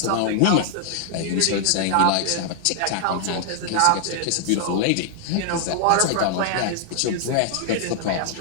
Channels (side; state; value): both; different; correlation -0.01